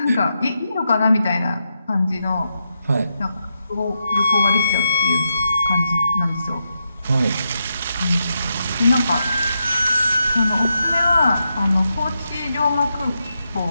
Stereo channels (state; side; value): inverted; both; correlation -0.85